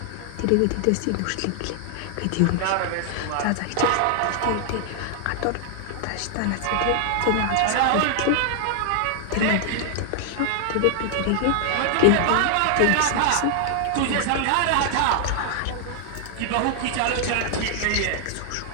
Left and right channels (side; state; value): both; different; correlation 0.00